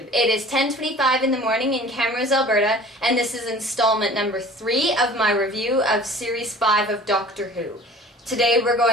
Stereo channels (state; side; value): normal; both; correlation 0.45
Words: it is 10:25 in the morning in Camrose, Alberta, and this is installment number 3 of my review of Series 5 of Doctor Who. Today we're